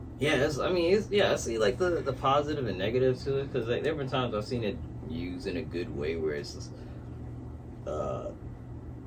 see like the positive and negative to it, because like, there have been times I've seen it used in a good way where it's just,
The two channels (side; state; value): both; identical; correlation 1.00